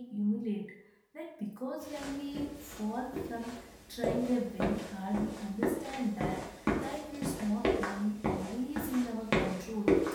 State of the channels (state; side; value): identical; both; correlation 1.00